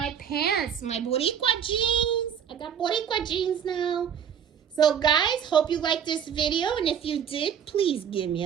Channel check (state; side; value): quieter; left; 8.3 dB